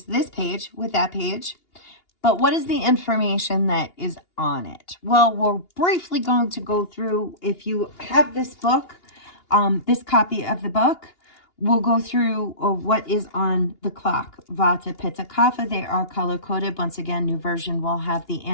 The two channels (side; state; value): right; late; 2.8 ms